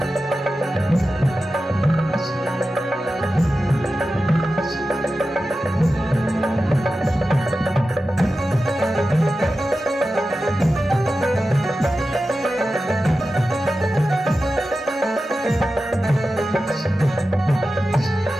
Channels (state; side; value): normal; both; correlation 0.93